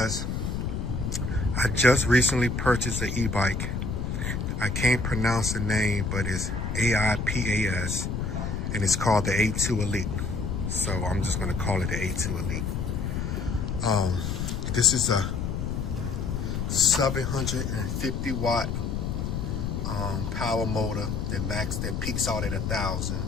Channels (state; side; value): noise; left; rumble, 2 dB below the sound